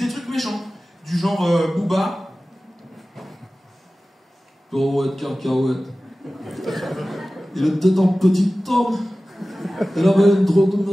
trucs méchants. Du genre Booba. Cacahuète, cacahuète. Il était un petit homme. Il avait une drôle de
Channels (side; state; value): both; normal; correlation 0.96